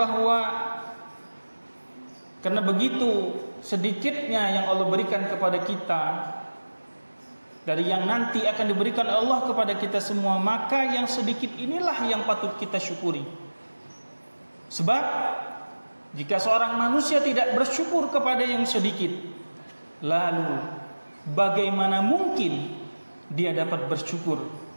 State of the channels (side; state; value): both; inverted; correlation -1.00